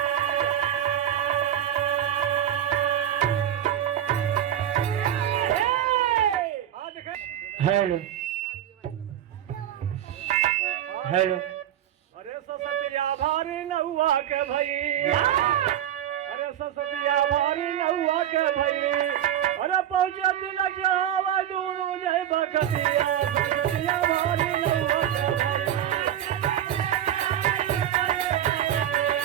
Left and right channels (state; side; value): quieter; left; 10.9 dB